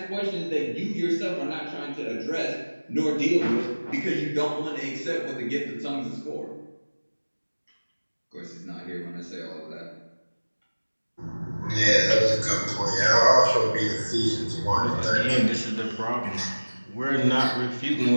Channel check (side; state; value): both; inverted; correlation -1.00